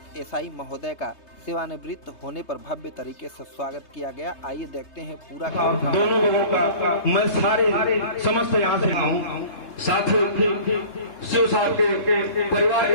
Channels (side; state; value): right; late; 3.3 ms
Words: एसआई महोदय का सेवानिवृत्त होने पर भव्य तरीके से स्वागत किया गया। आइए देखते हैं पूरा दोनों लोगों का मैं सारे समस्त यहाँ से हूँ। साथ ही शिव साहब के परिवार